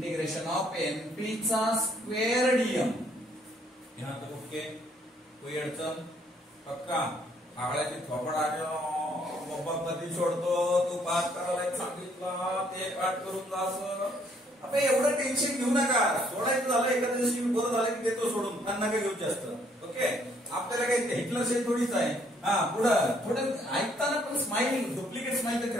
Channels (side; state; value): both; normal; correlation 0.66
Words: of NP चा square DM. यहाँ तक okay, कोई अडचण? पक्का? आगळ्याची थोपड बाबा कधी सोडतो? तू पाठ करायला सांगितला, ते पाठ करून जास. आता एवढं टेन्शन घेऊ नका. सोडायचं झालं एखाद्या दिवशी बरं झालं की देतो सोडून. त्यांना काय घेऊ जास्त. ओके, आपल्याला काही हिटलर शेल थोडीच आहे. पुढं थोडं ऐकताना पण स्माइल, डुप्लिकेट स्माइल